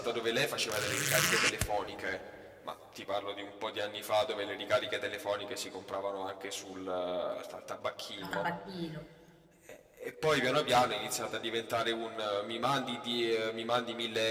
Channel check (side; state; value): both; identical; correlation 1.00